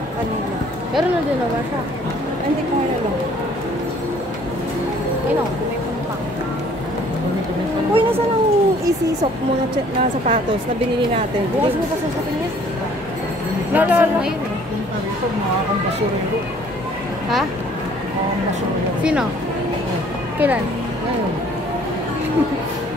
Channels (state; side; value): normal; both; correlation 0.57